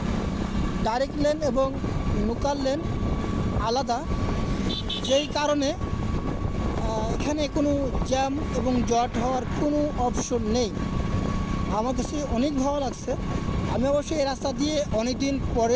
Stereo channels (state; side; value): identical; both; correlation 1.00